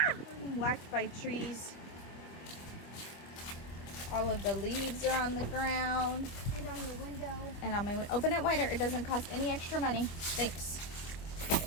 I'm whacked by trees. All of the leaves are on the ground. And on your window. And on my window. Open it wider. It doesn't cost any extra money. Thanks.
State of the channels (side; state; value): right; late; 25 ms